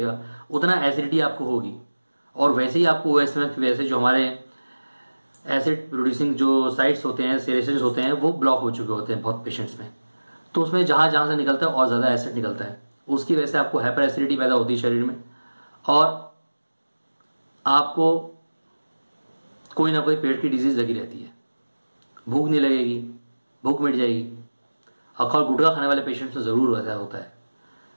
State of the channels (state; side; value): inverted; both; correlation -1.00